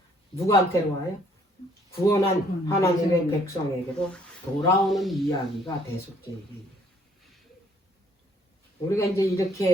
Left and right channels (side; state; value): both; normal; correlation 0.63